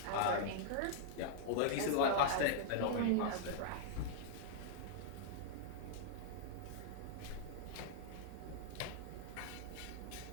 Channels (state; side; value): different; both; correlation -0.01